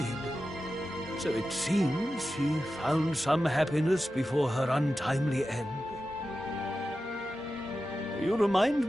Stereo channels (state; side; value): normal; both; correlation 0.92